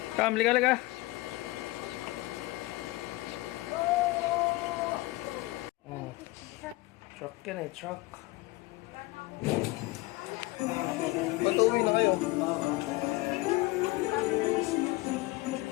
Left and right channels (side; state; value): right; quieter; 20.7 dB